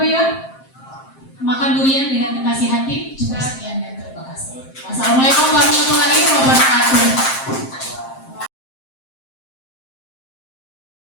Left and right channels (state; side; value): late; right; 7.6 ms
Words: Ibu. Makan durian dengan kekasih hati. Cukup sekian dan terima kasih. Wassalamualaikum warahmatullahi wabarakatuh.